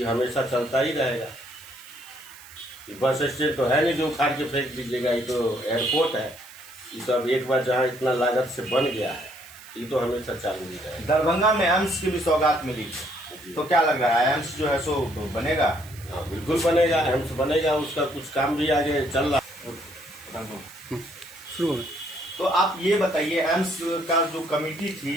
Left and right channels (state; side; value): noise; right; hiss, 20 dB below the sound